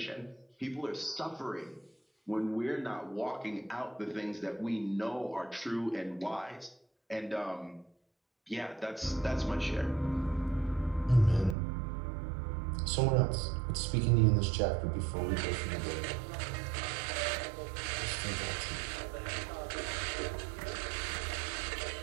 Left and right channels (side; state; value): left; drops out; at 11.6 s